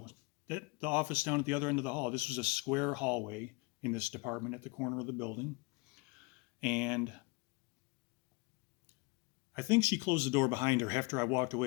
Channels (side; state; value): right; quieter; 27.6 dB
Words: at the office down at the other end of the hall." This was a square hallway in this department at the corner of the building. And I think she closed the door behind her after I walked